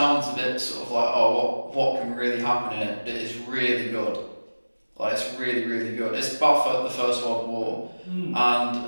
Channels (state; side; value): inverted; both; correlation -1.00